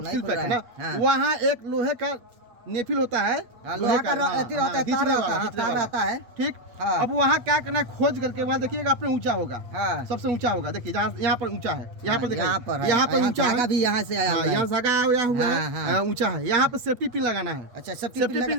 सील खुल पैक है ना। रहा है। हाँ। वहाँ एक लोहे का नेफिल होता है, हाँ, लोहा का अथी रहता है, खींचने तार रहता वाला, है, खींचने तार वाला। रहता है। ठीक। हाँ। अब वहाँ क्या करना है, खोज करके वहाँ देखिएगा, अपने ऊंचा होगा, हाँ। सबसे ऊंचा होगा। देखिए जहाँ यहाँ पर ऊंचा है, यहाँ पर यहाँ पर देखिए, है, यहाँ पर ऊंचा धागा है, भी यहाँ से आया हुआ है। यहाँ धागा आया हुआ हाँ, हाँ। है, ऊंचा है। यहाँ पर सेफ्टी पिन लगाना है। अच्छा, सेफ्टी सेफ्टी पिन पिन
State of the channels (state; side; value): late; left; 8.2 ms